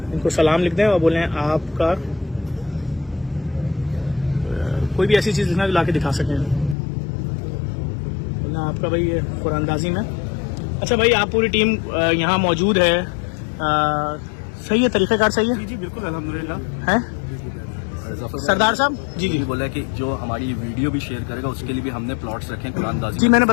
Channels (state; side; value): drops out; right; at 6.8 s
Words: इनको सलाम लिख दें और बोलें आपका कोई भी ऐसी चीज लिखना जो लाके दिखा सकें, बोलना आपका भाई ये कुरानदाजी में। अच्छा भाई, आप पूरी टीम यहाँ मौजूद है, सही है, तरीक़ाकार सही है? जी बिल्कुल अल्हम्दुलिल्लाह है। सरदार साहब जी बोला कि जो हमारी वीडियो भी शेयर करेगा उसके लिए भी हमने प्लॉट्स रखे हैं कुरानदाजी। जी मैंने